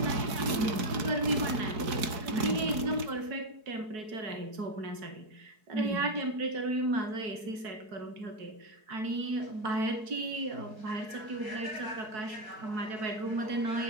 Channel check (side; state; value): left; late; 4.7 ms